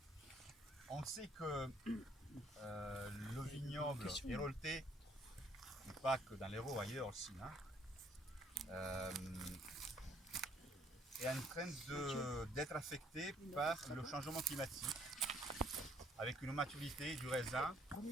On sait que le vignoble héroltais, et pas que dans l'Hérault, ailleurs aussi, hein, est en train d'être affecté par le changement climatique, avec une maturité du raisin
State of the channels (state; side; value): normal; both; correlation 0.64